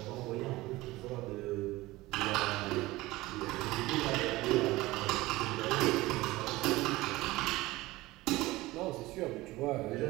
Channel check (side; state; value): left; quieter; 19.2 dB